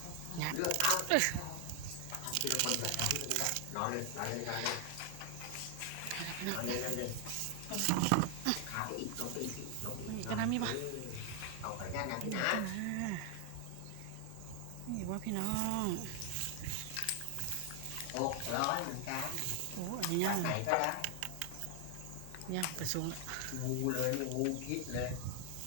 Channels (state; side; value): different; both; correlation 0.00